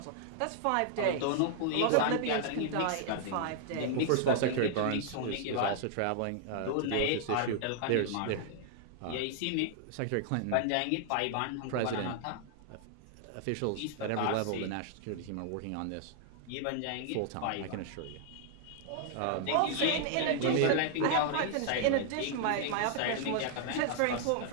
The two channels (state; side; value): different; both; correlation -0.01